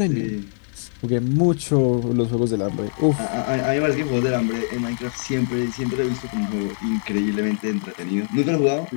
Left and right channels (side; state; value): right; silent; 64 dB below the other